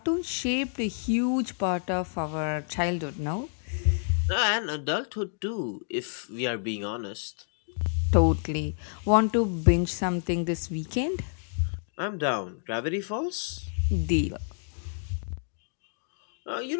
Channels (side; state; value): right; silent; digital silence